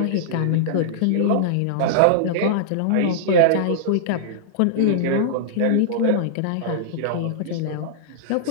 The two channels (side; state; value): both; different; correlation -0.02